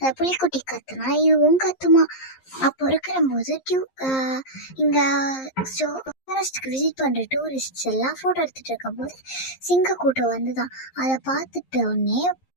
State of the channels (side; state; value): right; late; 11 ms